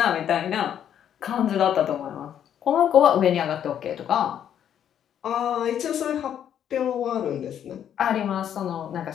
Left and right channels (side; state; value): right; quieter; 9.6 dB